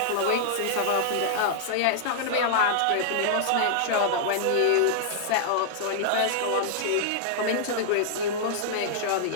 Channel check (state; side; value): different; both; correlation -0.01